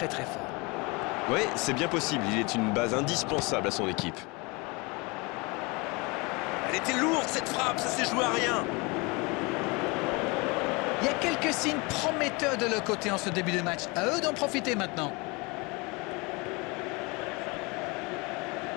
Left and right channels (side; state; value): right; quieter; 27.3 dB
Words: très fort. Oui, c'est bien possible. Il est une base indispensable à son équipe. Elle était lourde cette frappe, ça s'est joué à rien. Il y a quelques signes prometteurs de leur côté en ce début de match. À eux d'en profiter maintenant.